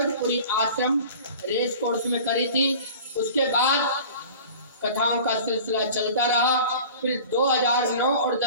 आश्रम रेस कोर्स में करी थी, उसके बाद कथाओं का सिलसिला चलता रहा। फिर 2009 और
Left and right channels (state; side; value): inverted; both; correlation -0.41